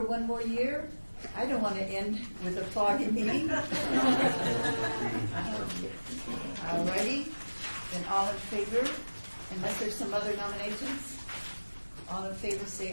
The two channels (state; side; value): inverted; both; correlation -1.00